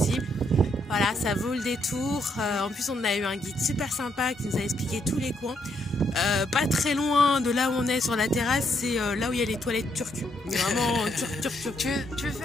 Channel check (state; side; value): normal; both; correlation 0.75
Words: ça vaut le détour. En plus, on a eu un guide super sympa qui nous a expliqué tous les coins. Pas très loin de là où on est sur la terrasse, c'est là où il y a les toilettes turques. Mais vraiment turc. Tu veux